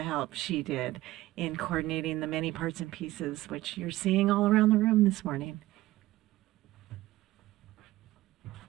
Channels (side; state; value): left; quieter; 16.7 dB